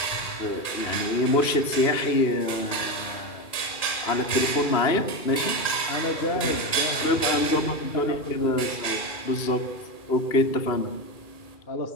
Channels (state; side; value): late; right; 2.4 ms